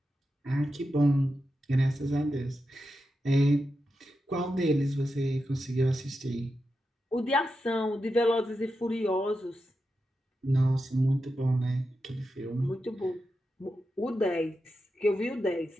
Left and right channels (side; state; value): both; normal; correlation 0.89